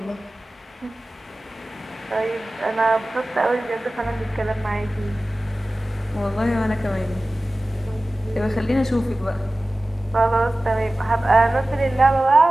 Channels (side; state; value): both; normal; correlation 0.97